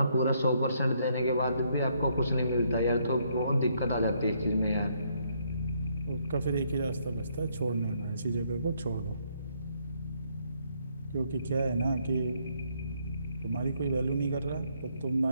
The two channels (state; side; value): inverted; both; correlation -0.71